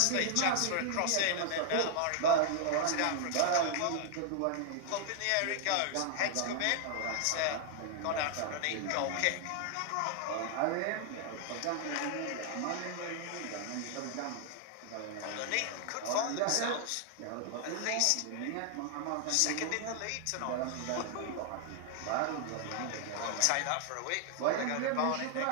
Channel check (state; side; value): different; both; correlation 0.00